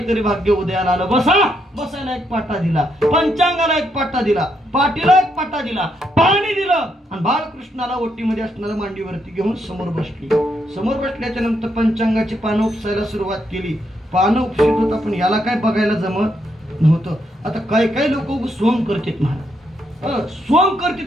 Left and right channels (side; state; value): both; normal; correlation 0.78